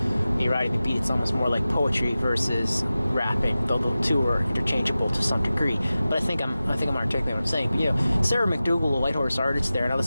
me riding the beat. It's almost more like poetry versus rapping, though the two are interchangeable to some degree. But I think I'm articulating what I'm saying. But Sarah McDougal, a Whitehorse artist there, and I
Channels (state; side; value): inverted; both; correlation -0.95